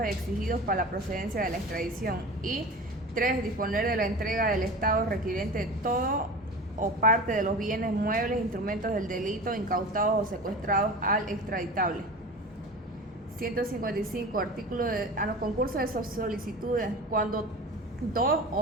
exigidos para la procedencia de la extradición. Y 3. Disponer de la entrega del Estado requirente de todo o parte de los bienes muebles, instrumentos del delito, incautados o secuestrados al extraditable. 155. Artículo de concurso de solicitudes. Cuando 2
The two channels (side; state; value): both; normal; correlation 0.33